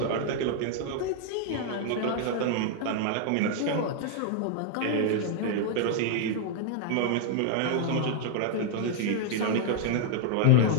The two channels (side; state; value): both; different; correlation 0.00